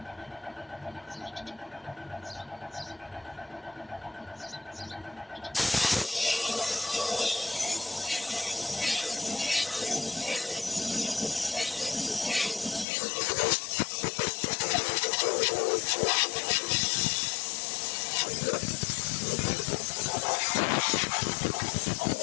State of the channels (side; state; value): right; drops out; at 12.9 s